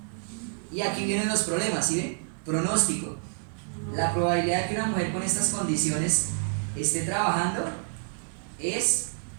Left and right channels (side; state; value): left; silent; 56 dB below the other